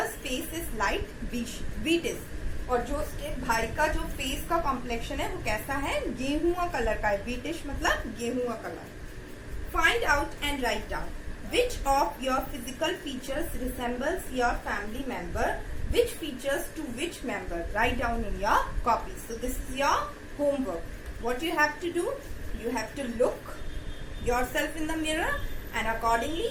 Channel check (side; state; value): both; identical; correlation 1.00